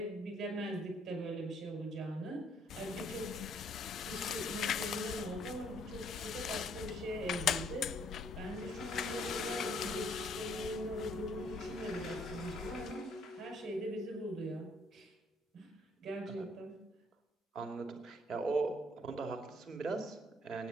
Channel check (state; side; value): normal; both; correlation 0.65